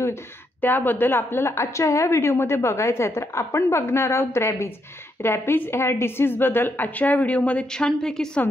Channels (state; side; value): normal; both; correlation 0.78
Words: त्याबद्दल आपल्याला आजच्या ह्या व्हिडिओमध्ये बघायचं आहे. तर आपण बघणार आहोत रॅबीज. रॅबीज ह्या डिसीजबद्दल आजच्या व्हिडिओमध्ये छानपैकी